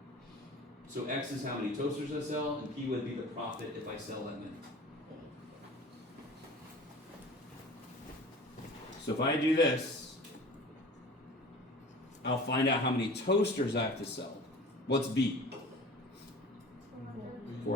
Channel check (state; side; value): normal; both; correlation 0.41